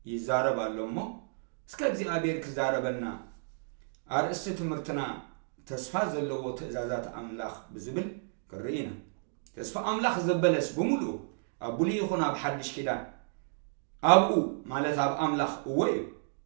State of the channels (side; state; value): left; silent; digital silence